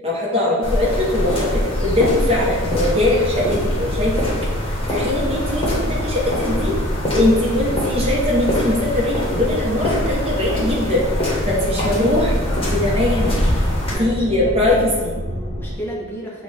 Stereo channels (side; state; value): both; normal; correlation 0.47